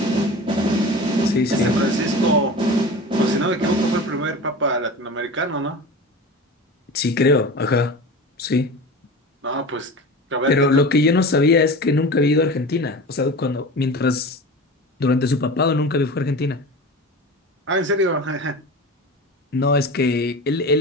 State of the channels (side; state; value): both; normal; correlation 0.33